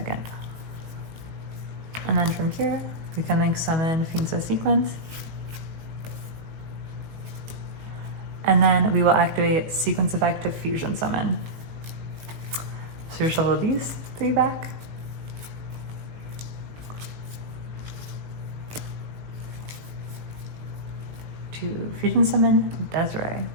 And then from here, we can link summon Fiendso Sequence. And then we will activate Sequence effect to fusion summon. So you shuffle these three back. To fusion summon Desirae.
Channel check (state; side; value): late; left; 18 ms